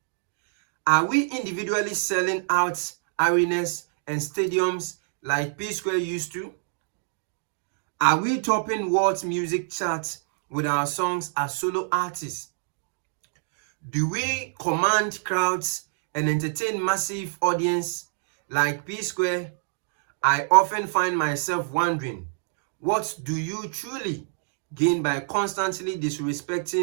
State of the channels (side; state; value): left; silent; digital silence